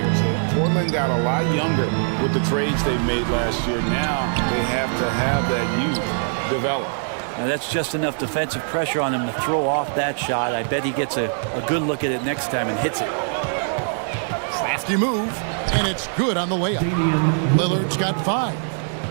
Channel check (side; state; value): left; silent; 64 dB below the other